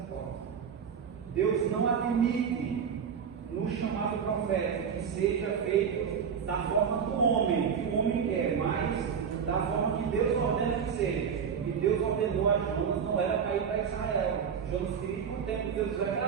forma. Deus não admite no chamado profético que seja feito da forma do homem, que o homem quer, mas da forma que Deus ordena que seja. E Deus ordenou a Jonas, não era para ir para Israel. Jonas queria ir para o tempo, Deus vai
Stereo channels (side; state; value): left; quieter; 7.0 dB